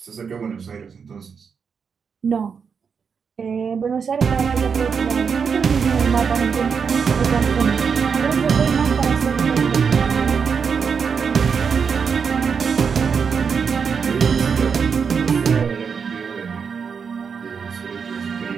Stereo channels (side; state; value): left; quieter; 6.2 dB